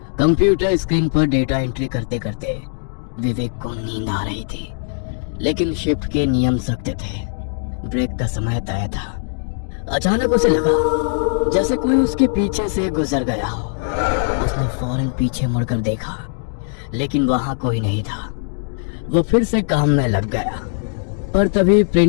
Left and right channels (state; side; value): silent; right; digital silence